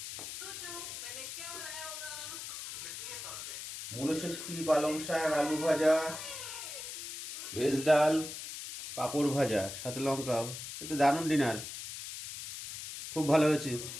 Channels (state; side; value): noise; left; hiss, 8 dB below the sound